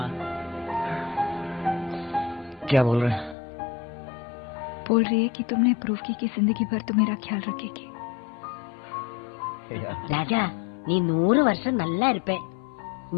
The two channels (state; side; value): drops out; right; at 3.4 s